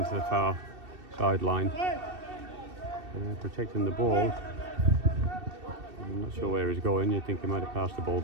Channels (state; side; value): late; left; 2.7 ms